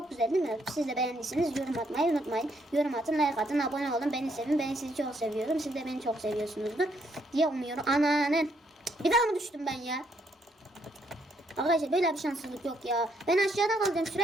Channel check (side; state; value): both; normal; correlation 0.73